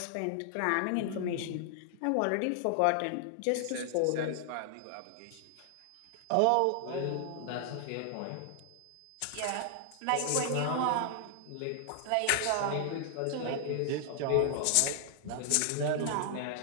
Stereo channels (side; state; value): both; different; correlation 0.00